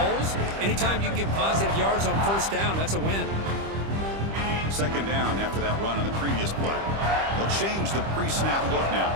Anytime you can get positive yards on first down, that's a win. Second down after that run on the previous play. They'll change the pre-snap look now.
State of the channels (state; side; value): late; left; 25 ms